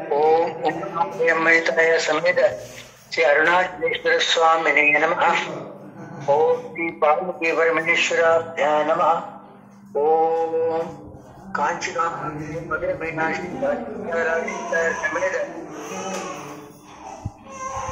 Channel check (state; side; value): identical; both; correlation 1.00